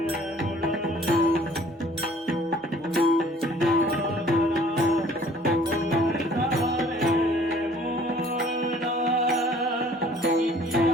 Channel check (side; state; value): both; normal; correlation 0.54